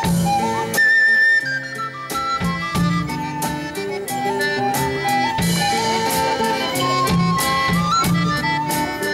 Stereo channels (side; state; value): both; identical; correlation 1.00